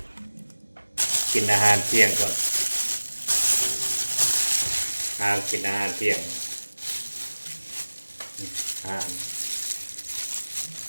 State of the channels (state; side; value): inverted; both; correlation -1.00